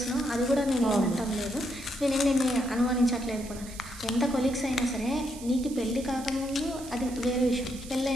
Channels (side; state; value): right; noise; hiss, 16 dB below the sound